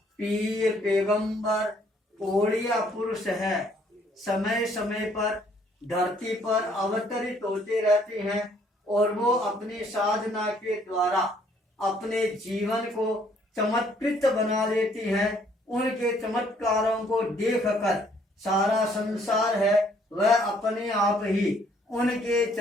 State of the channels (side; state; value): both; normal; correlation 0.64